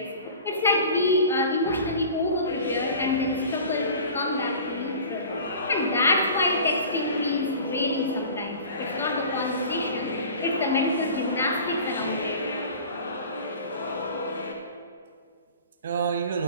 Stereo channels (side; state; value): both; inverted; correlation -0.41